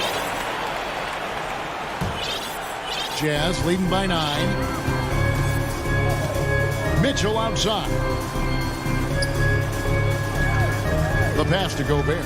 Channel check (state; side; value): identical; both; correlation 1.00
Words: Jazz leading by 9. Mitchell outside. The pass to Gobert.